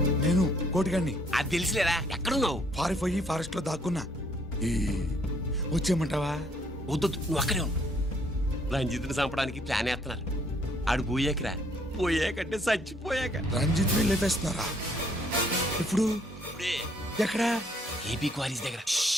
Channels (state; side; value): normal; both; correlation 0.66